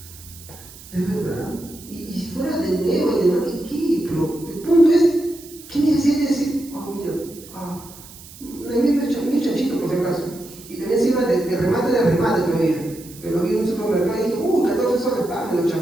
Es verdad. Y si fuera de nuevo y de nuevo, ¿qué? Pero el punto es, ¿qué necesidad de decir? Mira, mi chanchito por si acaso. Y también encima de remate todavía. Que lo vi en un supermercado y dije, 14 soles, me lo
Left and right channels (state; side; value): noise; right; hiss, 19 dB below the sound